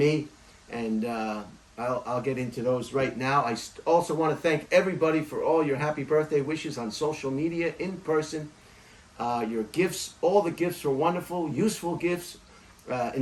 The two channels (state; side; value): identical; both; correlation 1.00